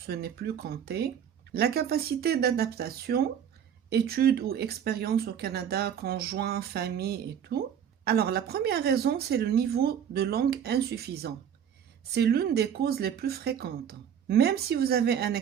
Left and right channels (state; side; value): quieter; left; 8.6 dB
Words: n'est plus compté, la capacité d'adaptation, études ou expériences au Canada, conjoint, famille et tout. Alors la première raison, c'est le niveau de langue insuffisant. C'est l'une des causes les plus fréquentes. Même si vous avez un